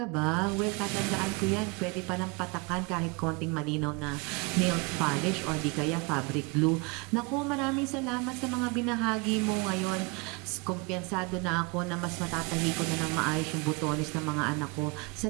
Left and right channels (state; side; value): quieter; left; 28.7 dB